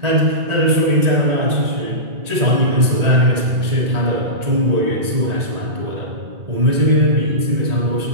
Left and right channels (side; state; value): left; late; 1.8 ms